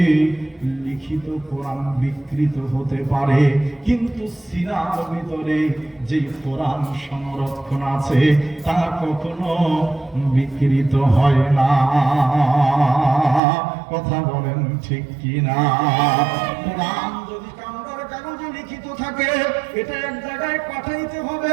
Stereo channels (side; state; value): left; drops out; at 13.4 s